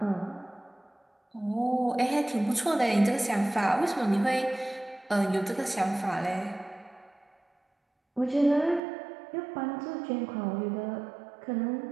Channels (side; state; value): left; drops out; at 8.8 s